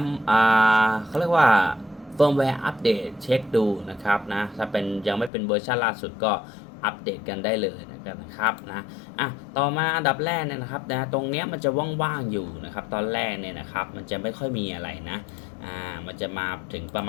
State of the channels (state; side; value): drops out; right; at 5.3 s